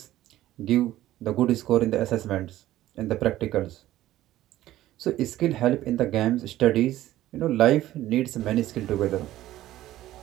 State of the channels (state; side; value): quieter; left; 14.5 dB